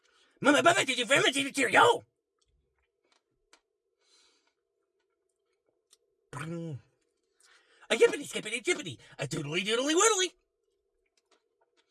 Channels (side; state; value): both; identical; correlation 1.00